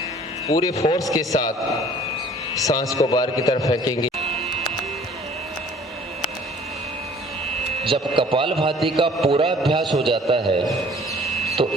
पूरे फोर्स के साथ सांस को बाहर की तरफ फेंकेंगे। जब कपालभाति का पूरा अभ्यास हो जाता है तो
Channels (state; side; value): normal; both; correlation 0.53